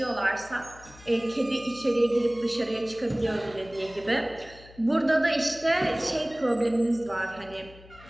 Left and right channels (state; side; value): noise; left; hum, 21 dB below the sound